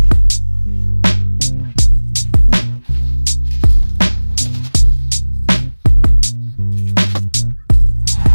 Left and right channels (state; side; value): inverted; both; correlation -1.00